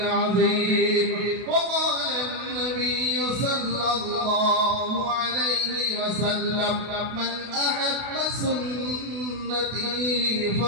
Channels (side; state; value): left; late; 32 ms